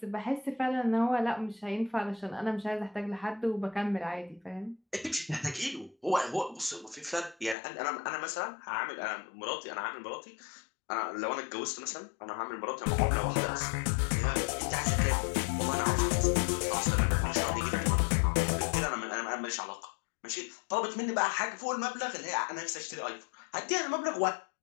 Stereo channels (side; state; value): right; drops out; at 7.6 s